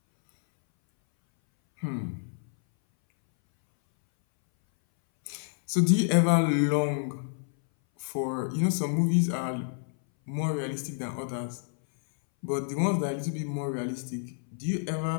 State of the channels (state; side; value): silent; right; 59 dB below the other